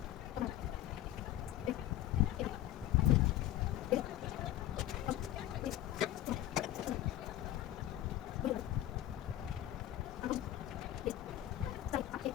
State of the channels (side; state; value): right; quieter; 13.5 dB